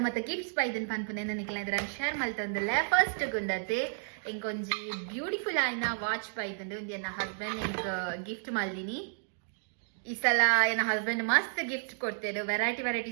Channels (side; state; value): left; silent; digital silence